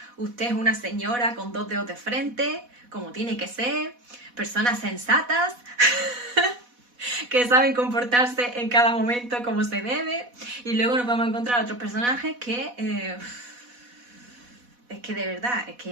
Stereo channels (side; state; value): left; late; 4.1 ms